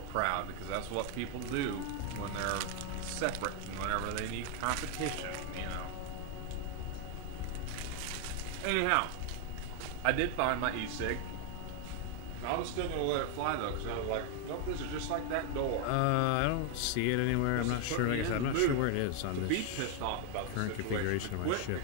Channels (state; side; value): different; both; correlation 0.00